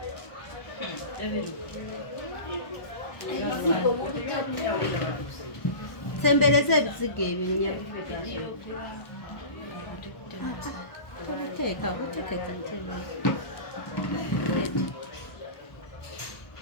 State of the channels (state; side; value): late; right; 1.3 ms